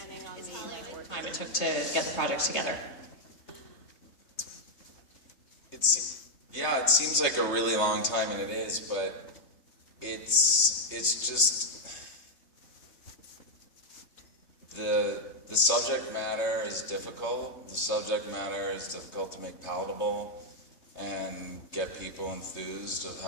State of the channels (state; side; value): late; right; 3.2 ms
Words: on the Time it took to get the project together. It seems like a really long time, and it is, but it's just the subject matter is difficult. The subject matter is difficult to make palatable and get people enthused of